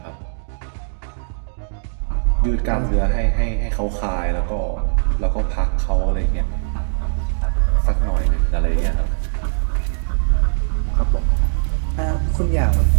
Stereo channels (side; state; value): left; silent; digital silence